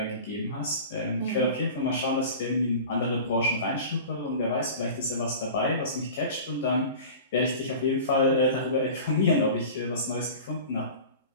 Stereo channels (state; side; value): inverted; both; correlation -0.37